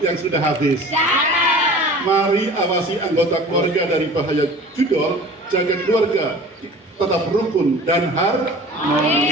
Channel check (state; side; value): normal; both; correlation 0.42